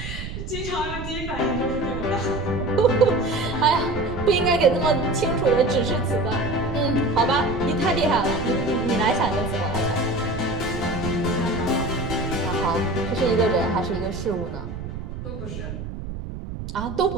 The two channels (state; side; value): noise; right; rumble, 8 dB below the sound